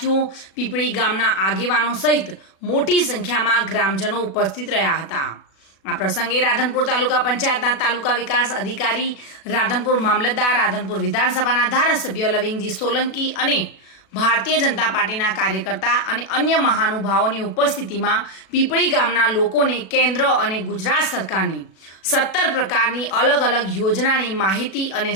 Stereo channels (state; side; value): late; right; 37 ms